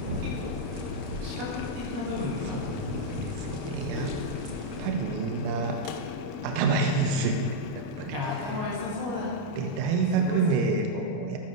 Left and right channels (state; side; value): late; left; 28 ms